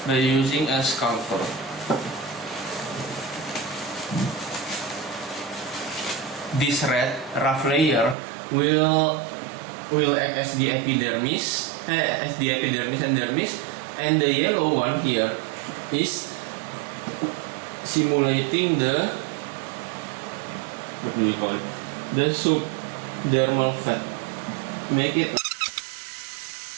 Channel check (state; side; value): drops out; left; at 8.2 s